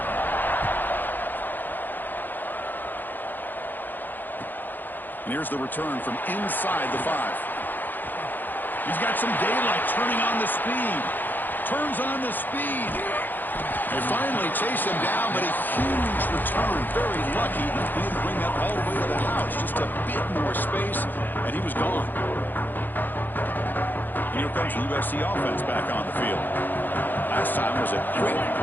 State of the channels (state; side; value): late; right; 0.089 ms